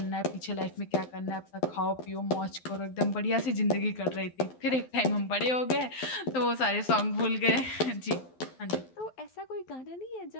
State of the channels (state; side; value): late; right; 12 ms